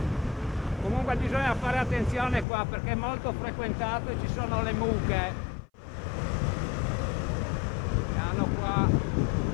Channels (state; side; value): drops out; right; at 2.5 s